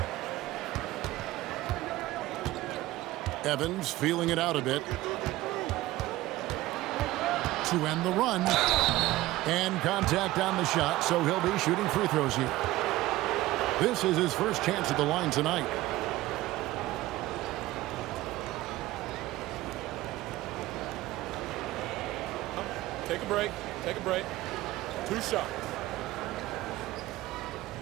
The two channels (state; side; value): quieter; left; 17.3 dB